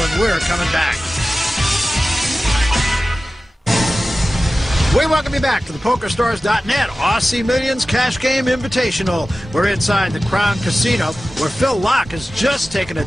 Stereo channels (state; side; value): normal; both; correlation 0.95